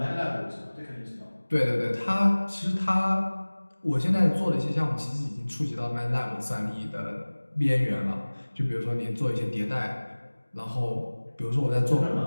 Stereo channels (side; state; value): both; inverted; correlation -1.00